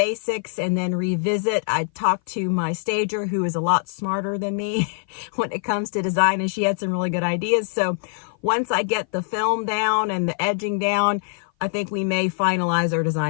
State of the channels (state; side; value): silent; right; 57 dB below the other